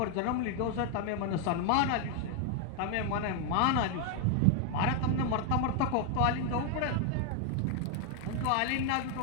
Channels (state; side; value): different; both; correlation 0.01